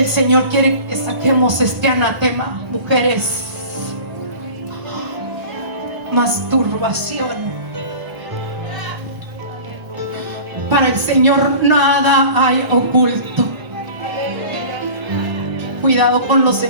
Señor quiere que saquemos este anatema, mujeres. Masturbación. Para el Señor nada hay oculto. Cuidado con los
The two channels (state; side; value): late; left; 1.4 ms